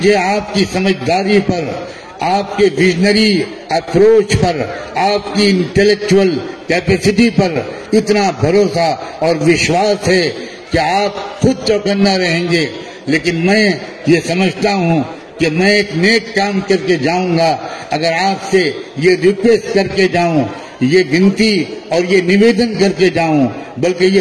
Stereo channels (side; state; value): both; identical; correlation 1.00